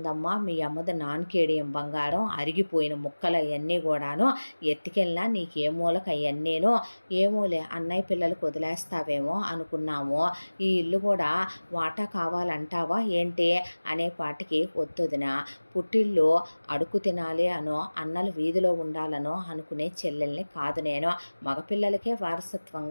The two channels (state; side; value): inverted; both; correlation -1.00